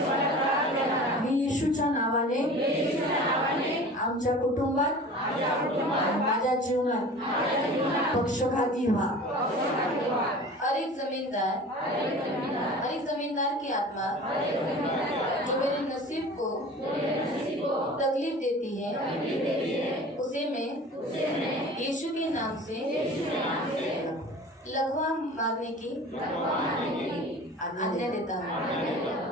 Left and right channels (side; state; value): both; normal; correlation 0.40